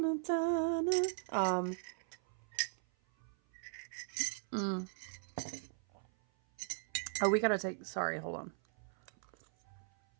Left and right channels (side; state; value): left; silent; 52 dB below the other